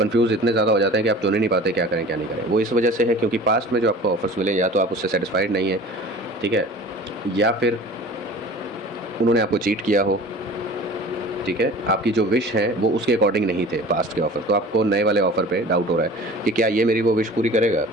इतने ज़्यादा हो जाते हैं कि आप चुन ही नहीं पाते क्या करें क्या नहीं करें। वो इस वजह से है क्योंकि पास्ट में जो आपको ऑफ़र्स मिले या तो आप उससे सेटिस्फाइड नहीं हैं, ठीक है, या फिर उन्होंने आपको चीट किया हो, ठीक है, आपकी जो विश है वो उसके अकॉर्डिंग नहीं थे पास्ट के ऑफ़र। तो आपको नए वाले ऑफ़र पे डाउट हो रहा है कि क्या ये मेरी वो विश पूरी करेगा,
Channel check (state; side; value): normal; both; correlation 0.41